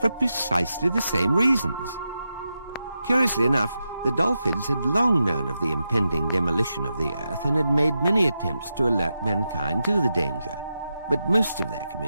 for precisely the same reasons. Curiously enough, the dolphins had long known of the impending demolition of the Earth and had made many attempts to alert mankind to the danger. But most of their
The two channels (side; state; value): both; inverted; correlation -0.88